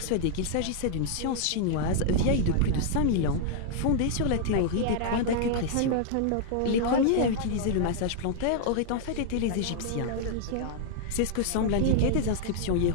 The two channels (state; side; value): different; both; correlation -0.01